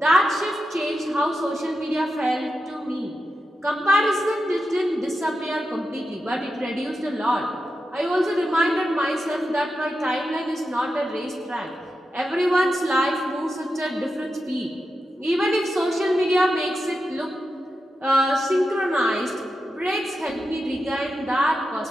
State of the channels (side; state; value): both; normal; correlation 0.89